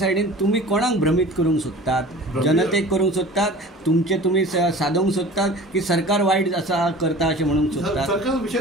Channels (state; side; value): normal; both; correlation 0.41